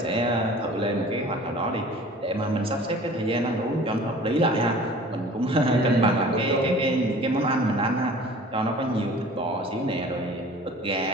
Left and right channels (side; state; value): both; normal; correlation 0.45